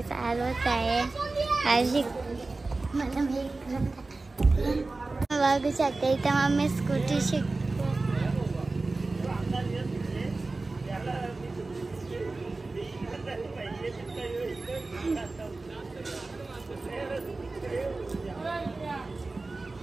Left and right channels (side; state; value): left; quieter; 3.4 dB